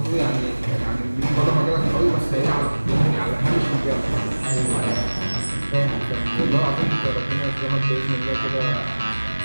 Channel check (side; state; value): both; inverted; correlation -1.00